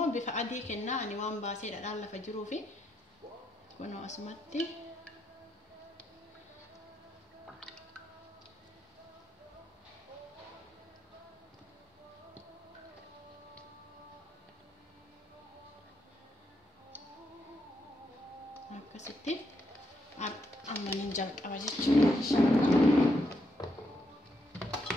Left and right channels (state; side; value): normal; both; correlation 0.79